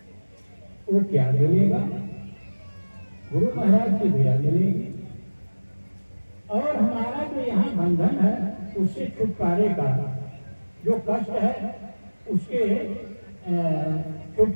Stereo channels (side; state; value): both; inverted; correlation -1.00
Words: वो क्या मिलेगा? गुरु महाराज की दया मिलेगी और हमारा जो यहाँ बंधन है उससे छुटकारे का जो कष्ट है उसके